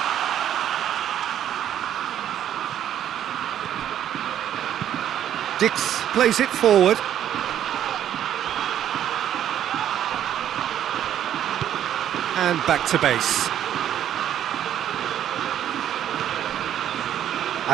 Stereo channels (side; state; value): left; quieter; 10.6 dB